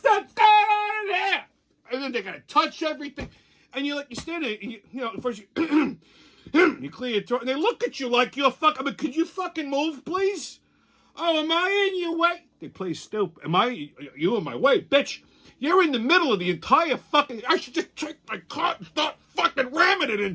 going on there? And then they're going to touch everything. And you're like, you stand there, and you know, first you... You clear your throat, and they look at you like you're fucking... I mean, could you fucking move, please? Oh, am I in your way? They play stupid. You in my way? Bitch, you're in the middle of the entire fucking... I should just take my car and start fucking ramming it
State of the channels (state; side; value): identical; both; correlation 1.00